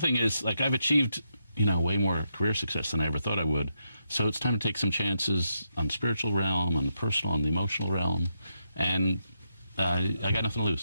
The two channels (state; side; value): inverted; both; correlation -0.82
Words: is, like, I've achieved, way more career success than I ever thought I would. So it's time to take some chances on the spiritual realm, on the personal, on the emotional realm, and I got nothing to